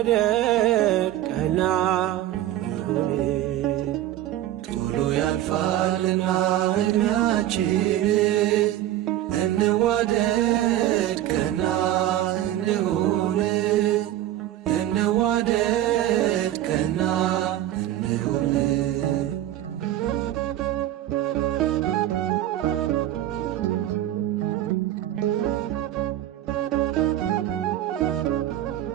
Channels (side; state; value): left; quieter; 13.2 dB